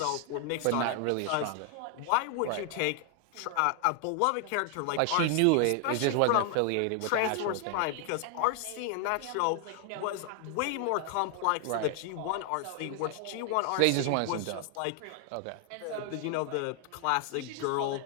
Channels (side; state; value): both; different; correlation 0.00